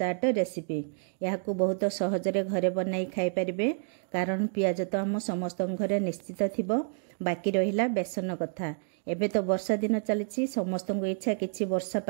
रेसिपी। यह बहुत सहजरे घरे बनाई खाई पारे कारण पियाज तो आम समस्त घरे निश्चित थी। बाकी रहा बेसन कथा। एबे तो वर्षा दिन चली समस्त इच्छा किसी वर्षा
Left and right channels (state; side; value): silent; left; 58 dB below the other